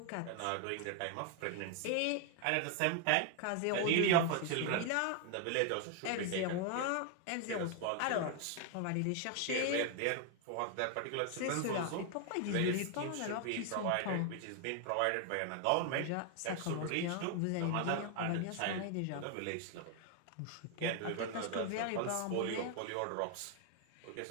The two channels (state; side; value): different; both; correlation 0.01